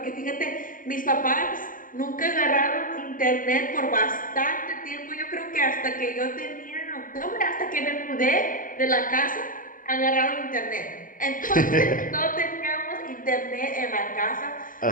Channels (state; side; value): late; right; 0.40 ms